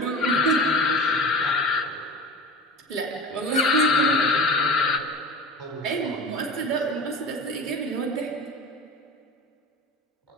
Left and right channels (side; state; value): both; normal; correlation 0.33